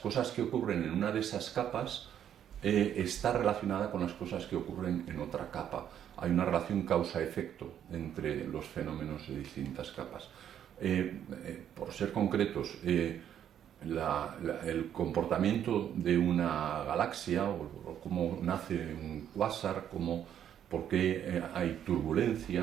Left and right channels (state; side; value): quieter; left; 9.8 dB